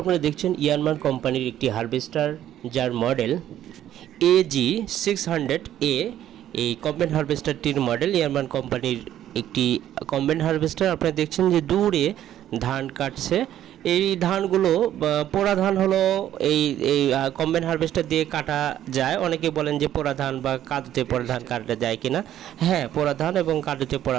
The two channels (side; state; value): left; quieter; 11.7 dB